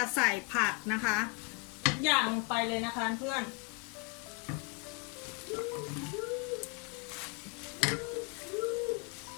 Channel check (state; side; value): quieter; right; 31.9 dB